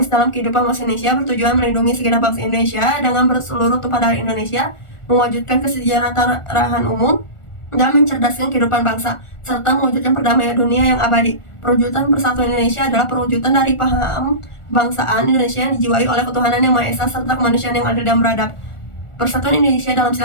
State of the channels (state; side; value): late; right; 1.4 ms